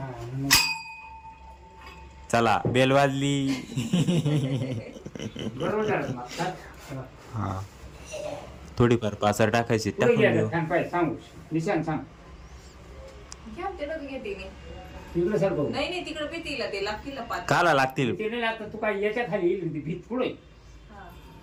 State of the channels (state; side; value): identical; both; correlation 1.00